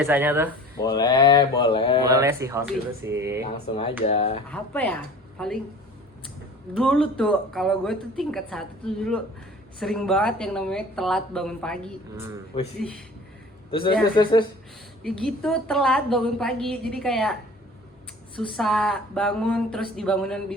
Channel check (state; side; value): normal; both; correlation 0.43